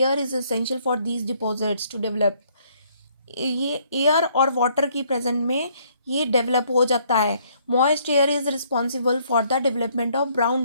is essential for these deposits to develop. ये एयर और वाटर की प्रेजेंट में ये डेवलप हो जाता है। Moist air is responsible for the development of brown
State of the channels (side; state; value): both; inverted; correlation -0.66